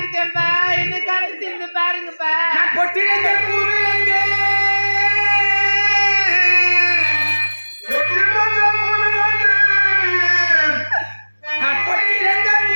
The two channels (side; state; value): both; inverted; correlation -1.00